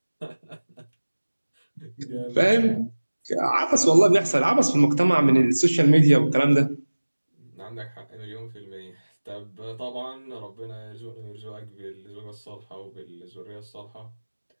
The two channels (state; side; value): inverted; both; correlation -1.00